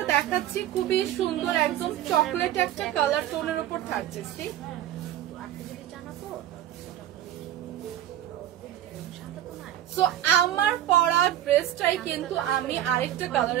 দেখাচ্ছি খুবই সুন্দর, একদম চকলেট একটা কালার টোনের উপর থাকছে। সো আমার পরা ড্রেসটাই কিন্তু আমি আরেকটা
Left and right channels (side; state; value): left; quieter; 11.9 dB